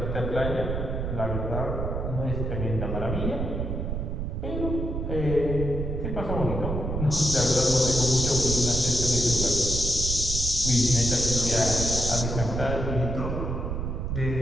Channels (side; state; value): right; noise; rumble, 2 dB below the sound